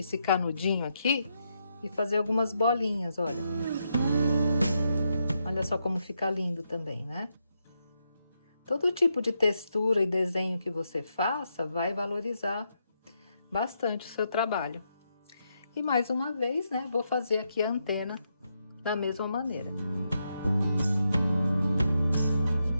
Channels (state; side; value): inverted; both; correlation -0.82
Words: canudinho aqui e fazer algumas bolinhas, olha. Olha só como fica lindo também, né? Todo tipo de textura e desenho que você faça vai valorizar bastante o seu trabalho. E mais uma vez, né, vou fazer aqui a antena da mesma maneira.